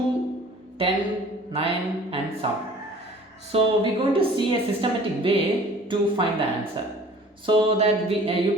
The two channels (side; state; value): both; normal; correlation 0.49